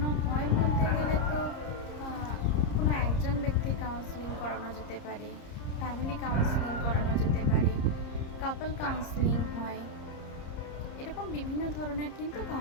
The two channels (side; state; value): right; late; 30 ms